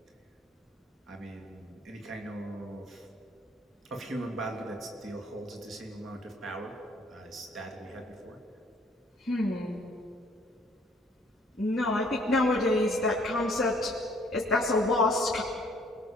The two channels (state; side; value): normal; both; correlation 0.60